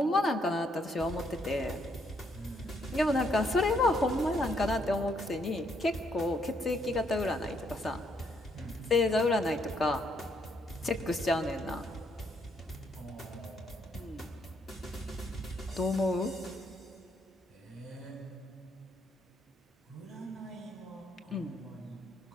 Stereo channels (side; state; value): both; normal; correlation 0.73